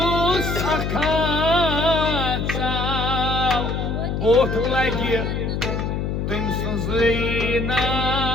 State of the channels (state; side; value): noise; left; hum, 1 dB below the sound